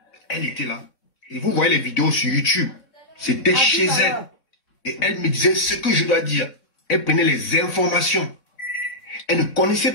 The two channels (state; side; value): late; right; 3.7 ms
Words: elle était là. Et vous voyez les vidéos sur YouTube. C'était chez elle. Et elle me disait ce que je dois dire. Elle prenait les informations. Elle ne connaissait